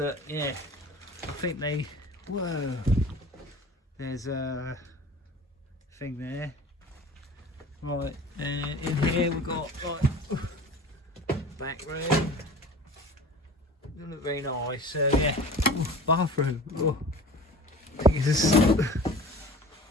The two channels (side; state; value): both; normal; correlation 0.39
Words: yeah, I think they. Whoa, there's a thing there. Right, and in here we've got like back room. Doesn't look very nice. So yeah, bathroom. I think it's a